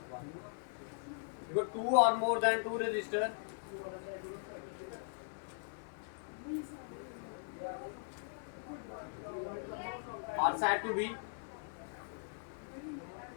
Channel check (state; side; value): silent; right; 51 dB below the other